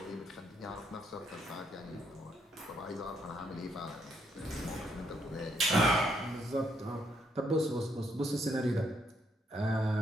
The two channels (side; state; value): both; normal; correlation 0.74